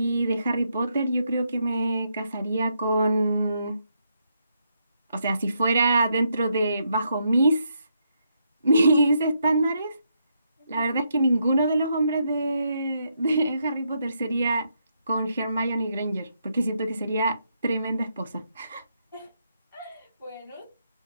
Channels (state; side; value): inverted; both; correlation -0.78